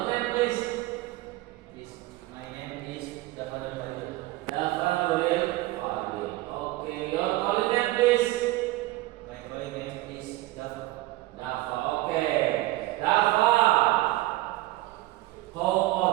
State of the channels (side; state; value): left; quieter; 18.3 dB